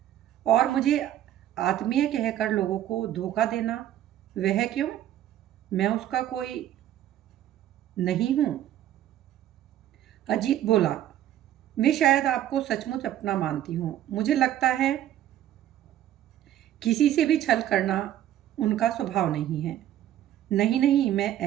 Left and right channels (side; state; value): left; quieter; 12.0 dB